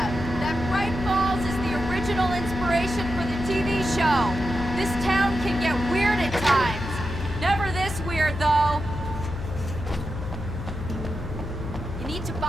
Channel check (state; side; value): noise; left; hum, 8 dB below the sound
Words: That Bright Falls is the original inspiration for the TV show. This town can get weird at times. Never this weird, though. You need to